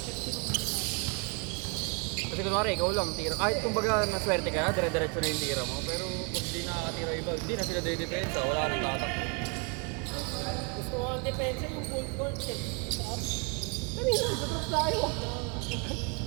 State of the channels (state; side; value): quieter; left; 33.1 dB